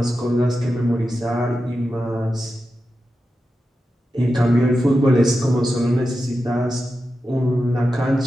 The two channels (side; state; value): both; normal; correlation 0.91